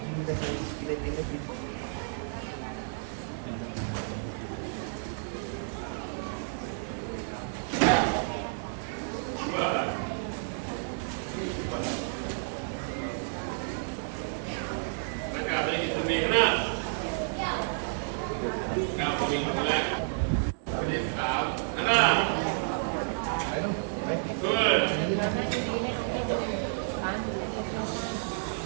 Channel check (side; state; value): left; silent; digital silence